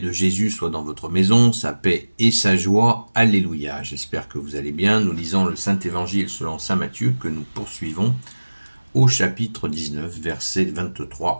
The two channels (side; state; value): both; inverted; correlation -1.00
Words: Jésus soit dans votre maison, sa paix et sa joie. Alléluia. J'espère que vous allez bien. Nous lisons le Saint-Évangile selon saint Matthieu que nous poursuivons au chapitre 19, versets